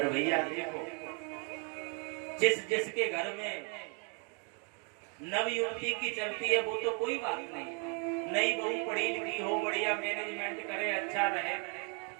भैया देखो, जिसके घर में नव युवती की चलती है वो तो कोई बात नहीं, नई बहू पढ़ी लिखी हो, बढ़िया मैनेजमेंट करे, अच्छा रहे,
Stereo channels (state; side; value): quieter; left; 36.4 dB